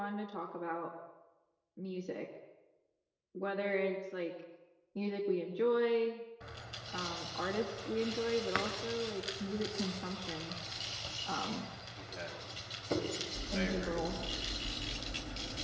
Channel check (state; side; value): identical; both; correlation 1.00